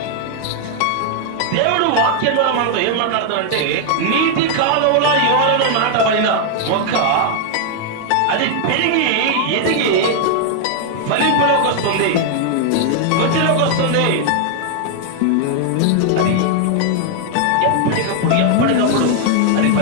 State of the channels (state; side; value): different; both; correlation 0.00